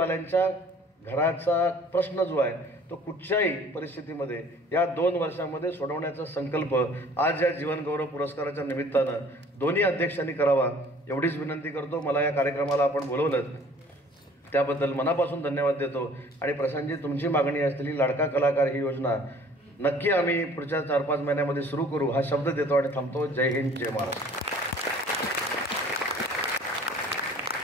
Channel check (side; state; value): both; normal; correlation 0.52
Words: घराचा प्रश्न जो आहे तो कुठच्याही परिस्थितीमध्ये या 2 वर्षांमध्ये सोडवण्याचा संकल्प आज या जीवनगौरव पुरस्काराच्या निमित्तानं दोन्ही अध्यक्षांनी करावा एवढीच विनंती करतो. मला या कार्यक्रमाला आपण बोलवलं त्याबद्दल मनापासून धन्यवाद देतो. आणि प्रशांतजी, तुमची मागणी असलेली लाडका कलाकार ही योजना नक्की आम्ही पुढच्या 4-5 महिन्यामध्ये सुरू करू हा शब्द देतो आणि थांबतो. जय हिंद, जय महाराष्ट्र.